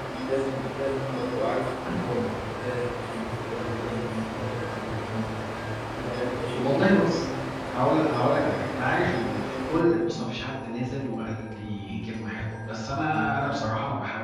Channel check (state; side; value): identical; both; correlation 1.00